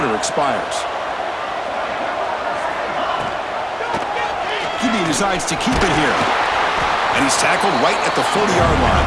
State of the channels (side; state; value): both; identical; correlation 1.00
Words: expires. QB decides to keep it here. And he's tackled right at the 40-yard